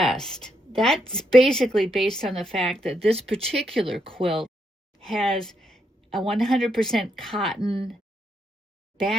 That's basically based on the fact that this particular quilt has a 100% cotton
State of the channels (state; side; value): normal; both; correlation 0.78